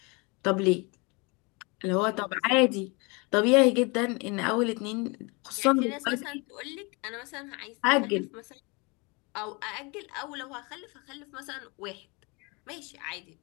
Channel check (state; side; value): quieter; right; 29.2 dB